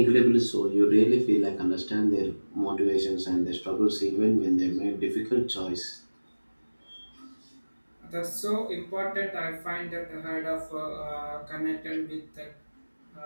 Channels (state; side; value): inverted; both; correlation -1.00